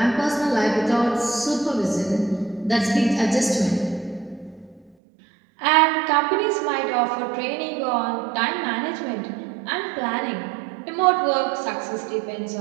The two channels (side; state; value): left; drops out; at 5.0 s